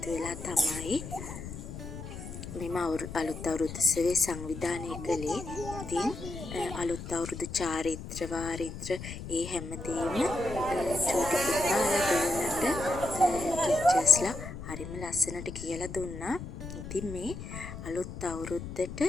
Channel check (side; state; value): left; noise; rumble, 9 dB below the sound